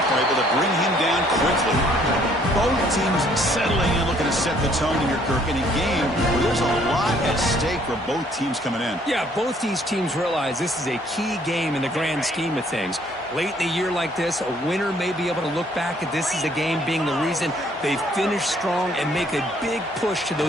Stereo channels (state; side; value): normal; both; correlation 0.63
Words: able to bring him down quickly. Both teams settling in, looking to set the tone here, Kirk, in a game where there's a lot at stake for both teams coming in. Yeah, both these teams realize this is a key game in the grand scheme of things. Late in a year like this, a winner may be able to look back at this as a game being the reason they finish strong and make a big push to